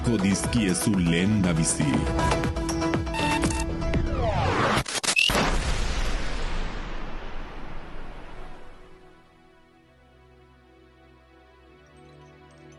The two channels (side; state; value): both; identical; correlation 1.00